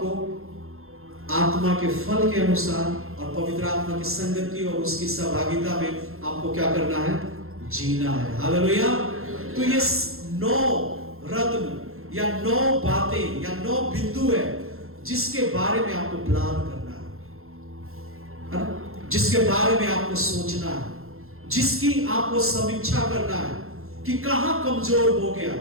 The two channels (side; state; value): left; late; 0.62 ms